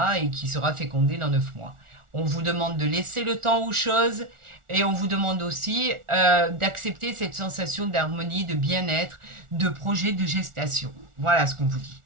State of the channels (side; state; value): left; late; 1.4 ms